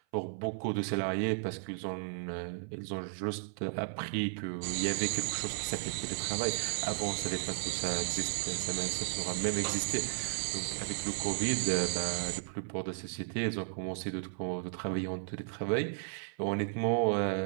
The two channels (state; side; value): silent; left; 55 dB below the other